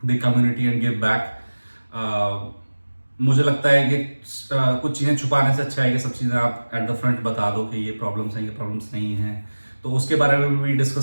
the community and give back. मुझे लगता है कि कुछ चीज़ें छुपाने से अच्छा है कि सब चीज़ें आप एट द फ्रंट बता दो कि ये प्रॉब्लम्स हैं, ये प्रॉब्लम्स नहीं हैं। तो उसके बारे में भी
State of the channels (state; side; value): inverted; both; correlation -1.00